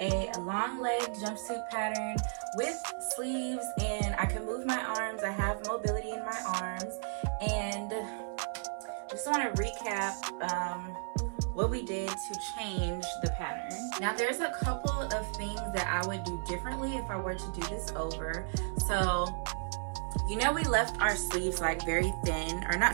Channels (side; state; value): left; silent; digital silence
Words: long leg jumpsuit pattern with sleeves, and I can move my arms. I have mobility in my arms, and just want to recap what we did to change the pattern. Now there's a couple of things that I would do differently if I were to do this over. So, you know, we left our sleeves like very thin, or